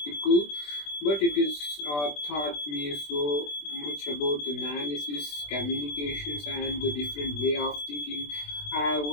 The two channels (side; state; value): right; late; 20 ms